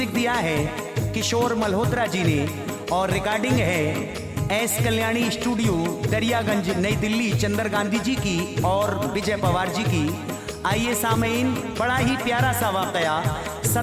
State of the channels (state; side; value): identical; both; correlation 1.00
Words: दिया है किशोर मल्होत्रा जी ने और रिकॉर्डिंग है एस कल्याणी स्टूडियो दरियागंज नई दिल्ली चंदर गांधी जी की और विजय पवार जी की। आइए सामीन, बड़ा ही प्यारा सा वाकया